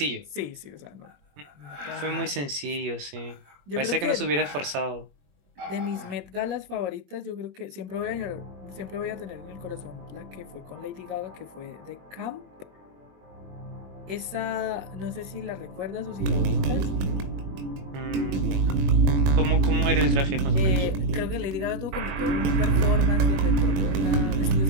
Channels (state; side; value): late; left; 21 ms